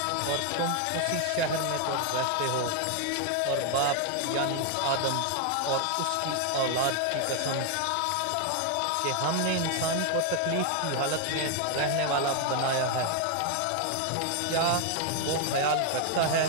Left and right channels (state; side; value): different; both; correlation 0.01